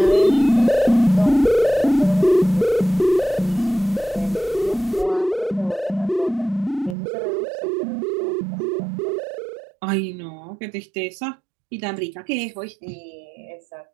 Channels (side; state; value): left; drops out; at 7.0 s